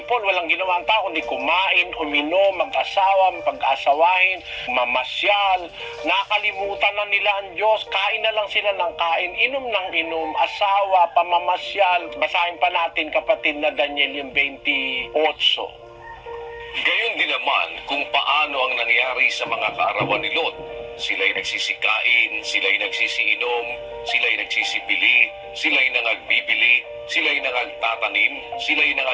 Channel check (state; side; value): identical; both; correlation 1.00